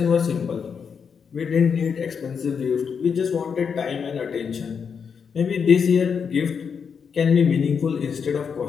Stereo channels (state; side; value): quieter; right; 6.5 dB